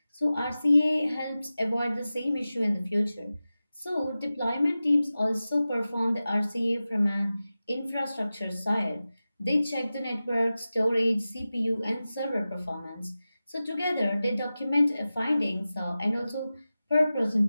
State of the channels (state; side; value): inverted; both; correlation -0.95